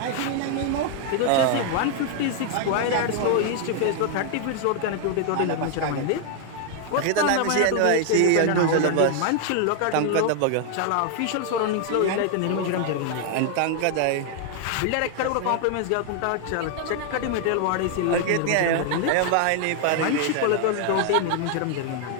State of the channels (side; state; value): both; different; correlation 0.00